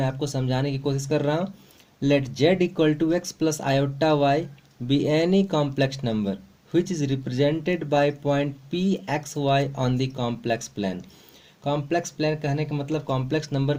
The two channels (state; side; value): identical; both; correlation 1.00